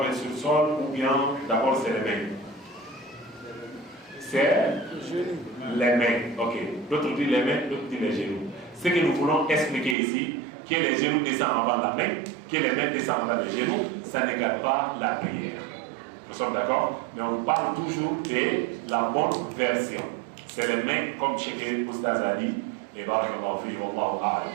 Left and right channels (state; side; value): drops out; left; at 10.0 s